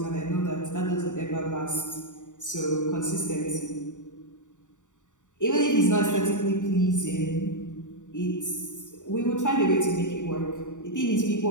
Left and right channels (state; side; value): late; right; 0.86 ms